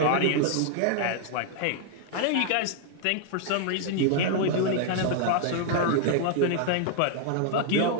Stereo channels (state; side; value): different; both; correlation 0.00